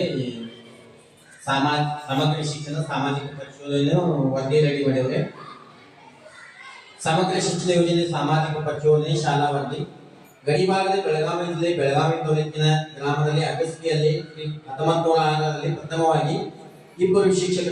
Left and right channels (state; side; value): identical; both; correlation 1.00